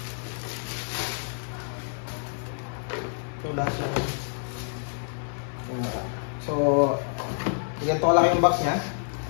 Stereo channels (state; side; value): silent; right; 59 dB below the other